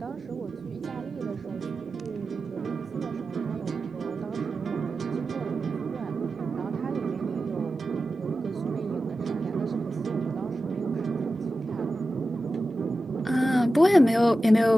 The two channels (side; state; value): both; normal; correlation 0.93